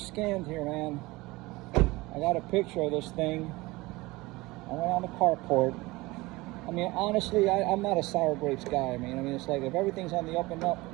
here, man. I got a picture of this thing. I went on the carport. I mean, honestly, I'm not a sour grapes guy. I mean, it's like if everything's on the up and up,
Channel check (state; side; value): quieter; left; 21.3 dB